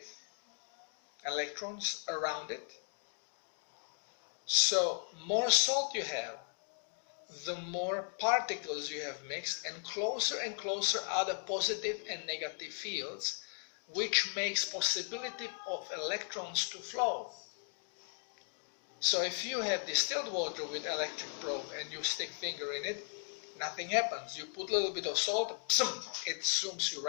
electrons around it. So more salt you have, the more particles you have mixed, and closer are the positive and negative fields, which makes possibility of electrons to flow. So if you have distilled water with electric probe and you stick finger in it, nothing happens. You put a little bit of salt, it zooms you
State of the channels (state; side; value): silent; right; 53 dB below the other